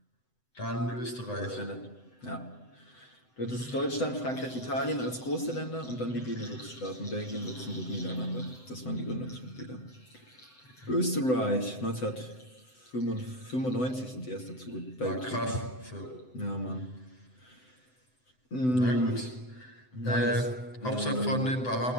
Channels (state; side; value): late; right; 7.9 ms